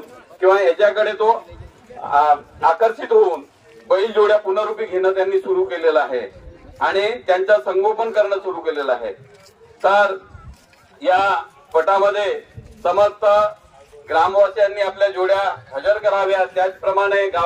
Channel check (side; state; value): both; identical; correlation 1.00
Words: किंवा याच्याकडे तो आकर्षित होऊन बैल जोड्या पुनरुपी घेणं त्यांनी सुरू केलेलं आहे आणि त्यांचं संगोपन करणं सुरू केलेलं आहे. तर या पटामध्ये समस्त ग्रामवासियांनी आपल्या जोड्या हजर कराव्या. त्याचप्रमाणे